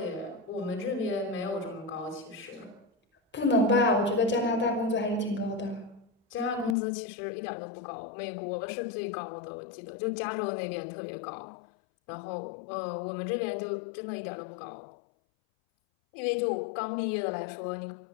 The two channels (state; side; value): drops out; right; at 6.8 s